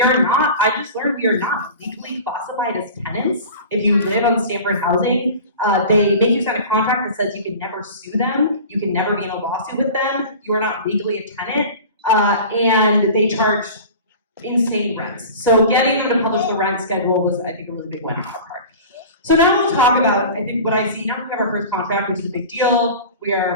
are not, I just learned we are not legally classified as tenants. If you live on Stanford housing, they make you sign a contract that says you can never sue them, you can never be in a lawsuit with them, you are not legally a tenant, and they charge insane rents. So getting them to publish the rent schedule was, I think, a really big win on our part. So now we'll talk about, I think, what I see. Now we have our first contract, which is a big deal. We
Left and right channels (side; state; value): both; inverted; correlation -0.37